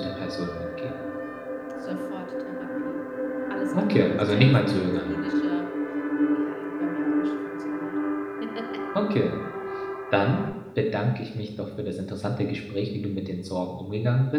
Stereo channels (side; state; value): both; identical; correlation 1.00